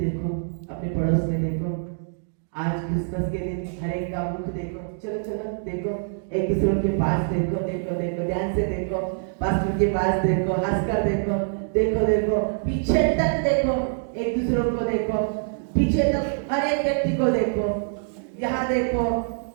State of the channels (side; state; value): left; silent; digital silence